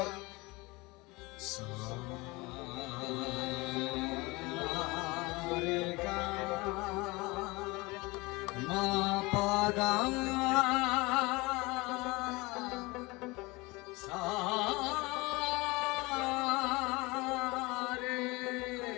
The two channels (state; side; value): quieter; right; 23.7 dB